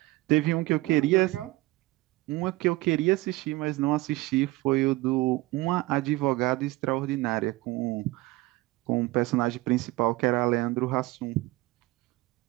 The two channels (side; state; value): left; quieter; 20.0 dB